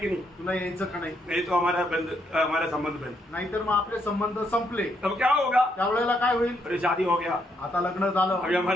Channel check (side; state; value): both; normal; correlation 0.75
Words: नहीं? तुला यायचं का नाही? नहीं तो हमारा संबंध बंद। नाहीतर मग आपले संबंध संपले। तब क्या होगा? त्यावेळेला काय होईल? अरे शादी हो गया, आता लग्न झालं, अभी